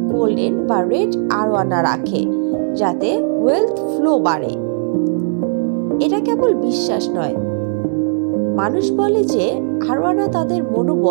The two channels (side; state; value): left; silent; digital silence